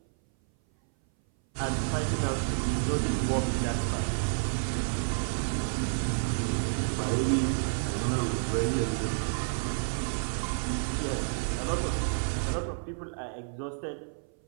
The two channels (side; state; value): left; silent; 58 dB below the other